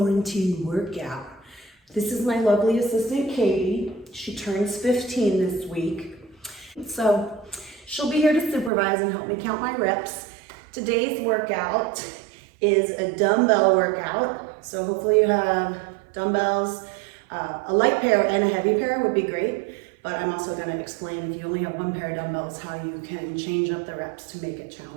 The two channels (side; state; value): left; drops out; at 8.7 s